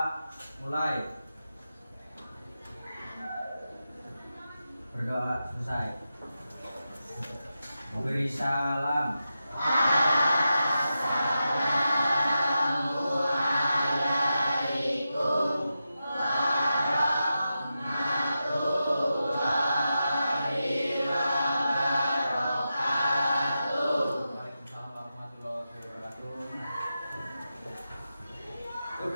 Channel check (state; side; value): inverted; both; correlation -0.90